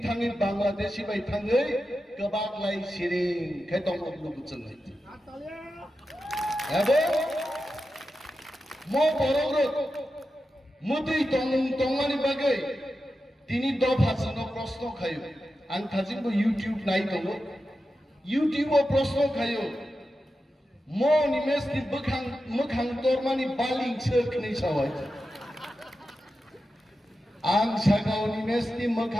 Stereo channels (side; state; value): both; normal; correlation 0.91